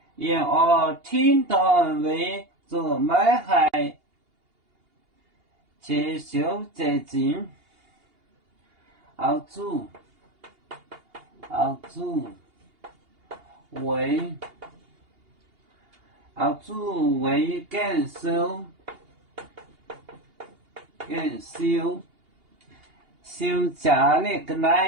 因而听到为做买害，接受责任。儿子为感受家里的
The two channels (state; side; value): late; left; 2.8 ms